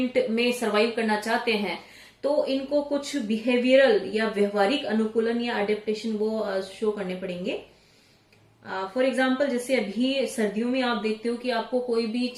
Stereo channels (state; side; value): identical; both; correlation 1.00